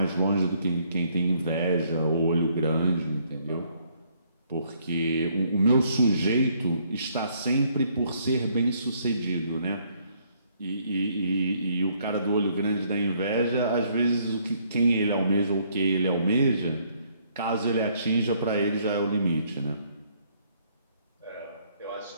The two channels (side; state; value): both; inverted; correlation -0.67